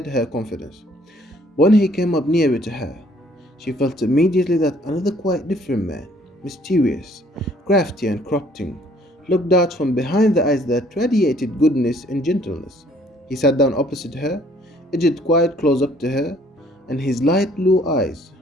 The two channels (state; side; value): normal; both; correlation 0.60